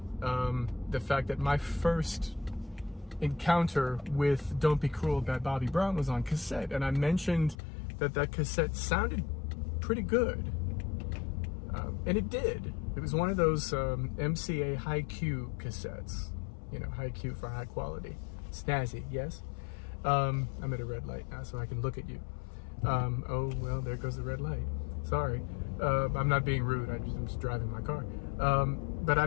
the fact that my first encounter with Don't Be Cruel by Bobby Brown was on cassette, and I mentioned that that cassette sounded pretty good, and it did. It was one of those MCA high Q cassettes, you know, high Q for high quality. Snazzy, yes? I'm at a red light now, so I can look at you. Oh, well, there goes the red light. Sorry. I'm not being rude, I'm just driving my car. But I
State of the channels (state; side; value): drops out; right; at 7.6 s